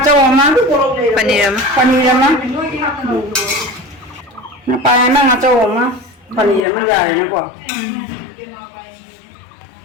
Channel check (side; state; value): right; drops out; at 6.6 s